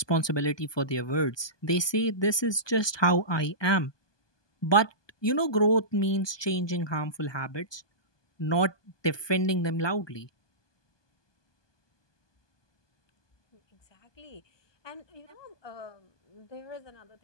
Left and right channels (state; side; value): late; right; 1.2 ms